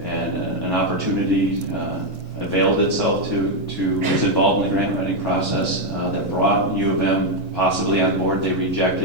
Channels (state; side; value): normal; both; correlation 0.02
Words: an opportunity availed itself was involved in the grant writing process that brought U of M possibly on board. They